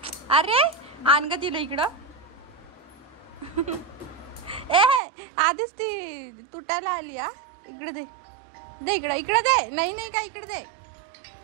अरे आण ग तिला इकडं. ए आधीच ती तुटायला आली. इकडे दे इकडे दे. नाही का इकडे दे.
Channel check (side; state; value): left; drops out; at 5.0 s